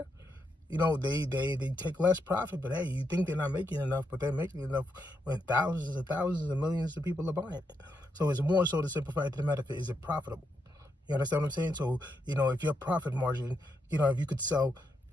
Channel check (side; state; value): both; normal; correlation 0.81